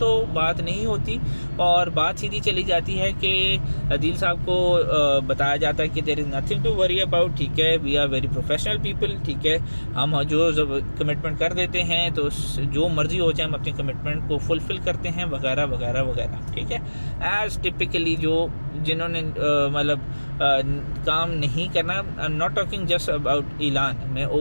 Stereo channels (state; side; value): inverted; both; correlation -1.00